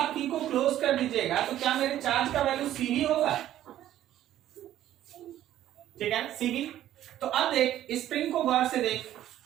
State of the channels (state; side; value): quieter; left; 12.5 dB